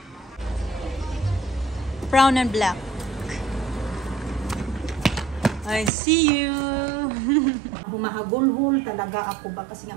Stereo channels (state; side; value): drops out; left; at 5.9 s